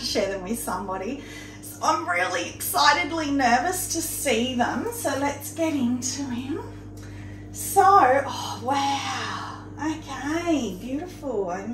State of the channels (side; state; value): both; identical; correlation 1.00